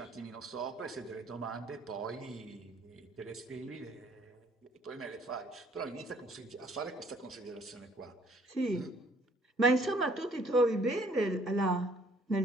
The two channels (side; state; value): both; normal; correlation 0.61